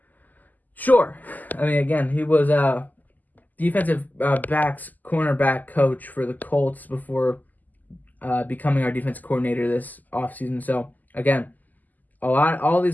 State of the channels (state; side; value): late; right; 0.083 ms